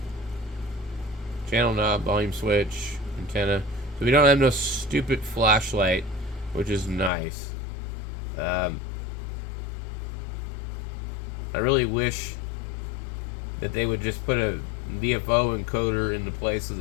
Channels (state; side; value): drops out; right; at 7.1 s